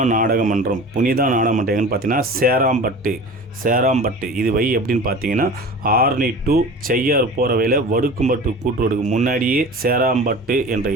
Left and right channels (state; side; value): normal; both; correlation 0.37